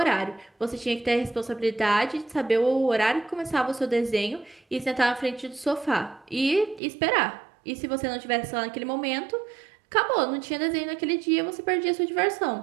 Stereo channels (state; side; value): drops out; left; at 6.8 s